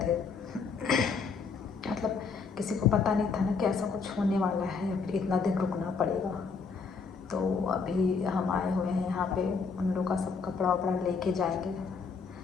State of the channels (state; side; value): quieter; right; 5.1 dB